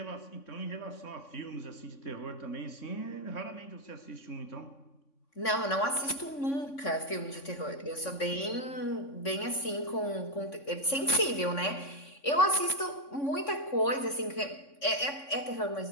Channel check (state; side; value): late; right; 3.6 ms